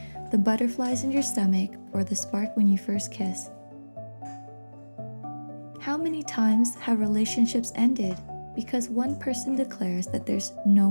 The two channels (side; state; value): both; inverted; correlation -1.00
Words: the butterflies in your stomach, or the spark when you first kiss. How many times have relationships ended because one person declares that there's no